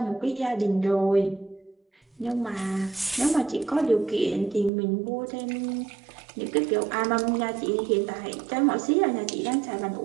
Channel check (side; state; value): left; drops out; at 4.7 s